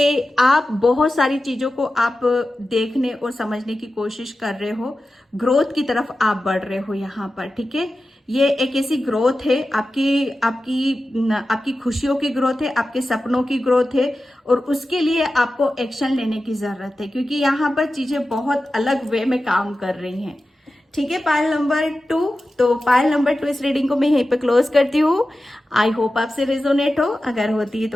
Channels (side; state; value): both; normal; correlation 0.93